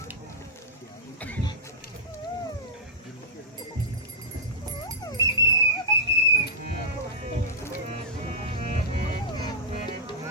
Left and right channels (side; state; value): both; normal; correlation -0.13